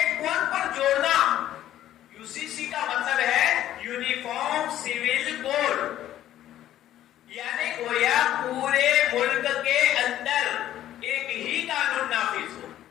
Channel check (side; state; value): right; quieter; 12.5 dB